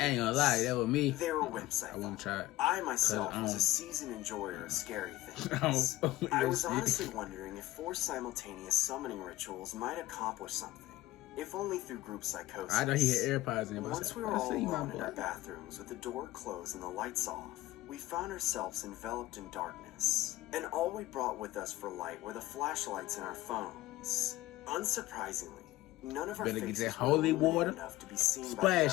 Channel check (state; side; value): quieter; right; 16.9 dB